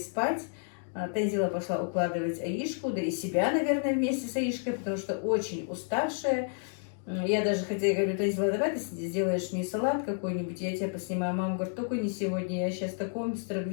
Танзила пошла укладывать Аишку, да и себя, наверное, вместе с Аишкой, потому что очень уставшая. Я даже хотела, говорю, Танзила, давай ты сделаешь мне салат какой-нибудь, я тебя поснимаю. Мама говорит, только не сегодня, я сейчас в таком быстром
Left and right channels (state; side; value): silent; right; 57 dB below the other